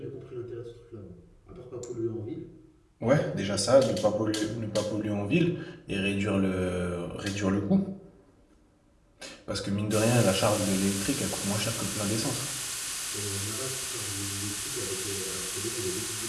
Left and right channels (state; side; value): identical; both; correlation 1.00